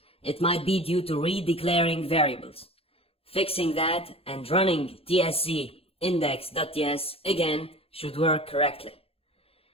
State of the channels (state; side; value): late; right; 0.28 ms